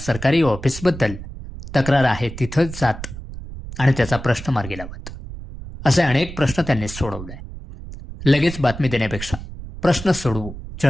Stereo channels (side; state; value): right; noise; rumble, 11 dB below the sound